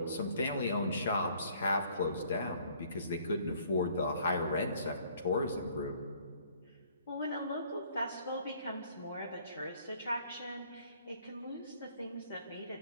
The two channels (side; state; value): both; inverted; correlation -0.59